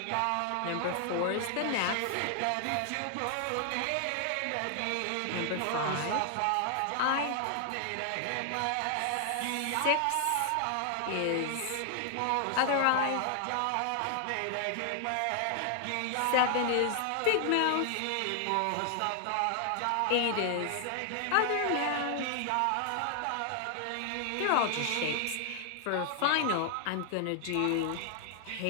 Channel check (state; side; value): different; both; correlation 0.00